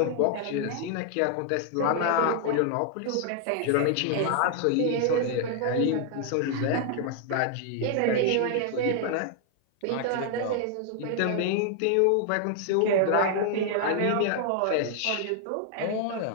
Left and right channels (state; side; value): different; both; correlation 0.00